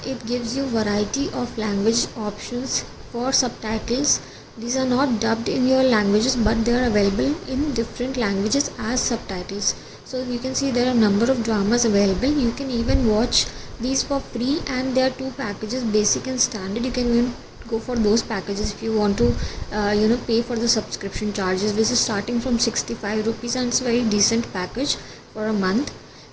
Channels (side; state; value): both; identical; correlation 1.00